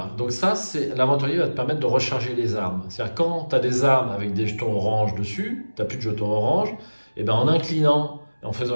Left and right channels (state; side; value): inverted; both; correlation -1.00